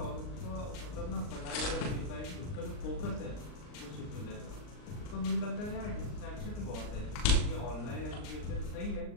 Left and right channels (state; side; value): late; right; 39 ms